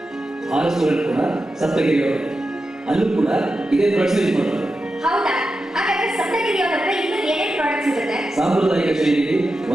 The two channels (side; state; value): both; normal; correlation 0.90